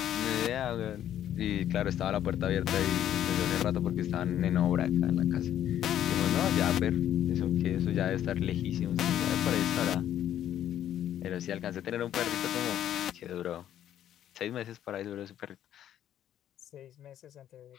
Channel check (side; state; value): right; quieter; 11.1 dB